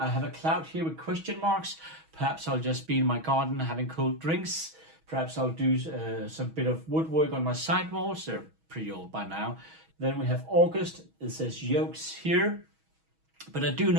have a cloud here with question marks. Perhaps I'll just be in my garden having cold drinks. Perhaps I'll do some bit of woodwork on my sidewalls. They're pretty old by now. Then we have August. It says Yokes here. But I do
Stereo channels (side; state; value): left; late; 6.2 ms